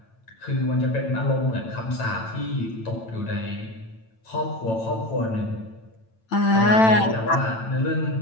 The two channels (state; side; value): late; right; 9.0 ms